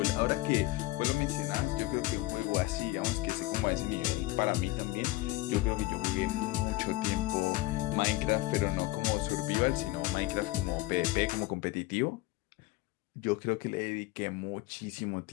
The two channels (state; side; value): quieter; right; 18.9 dB